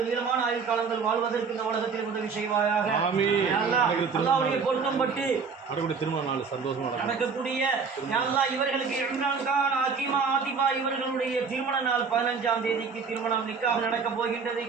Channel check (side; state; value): left; quieter; 5.3 dB